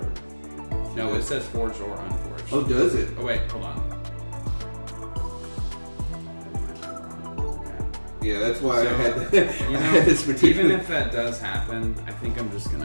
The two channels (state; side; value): inverted; both; correlation -1.00